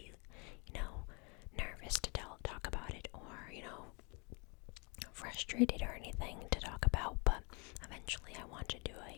nervous to talk about it, or frustrated or anything to talk about. But eventually, I want to do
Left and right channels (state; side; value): quieter; right; 31.5 dB